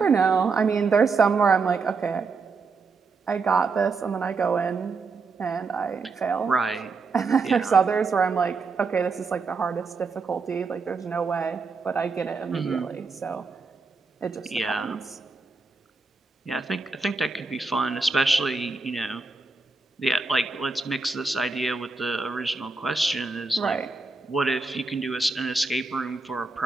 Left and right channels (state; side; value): quieter; left; 4.3 dB